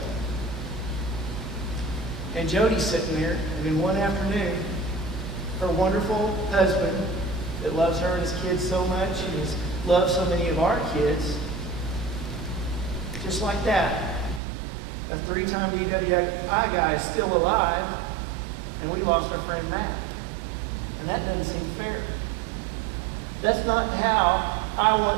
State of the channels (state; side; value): drops out; left; at 14.4 s